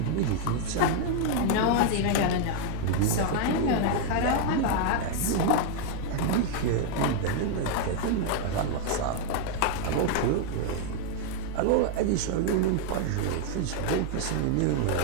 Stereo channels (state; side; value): different; both; correlation 0.00